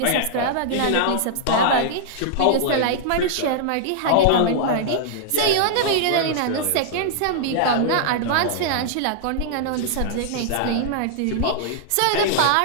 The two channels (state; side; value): different; both; correlation -0.01